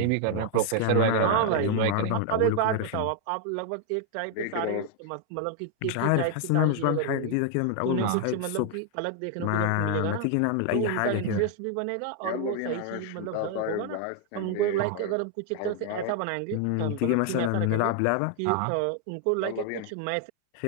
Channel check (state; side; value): different; both; correlation 0.00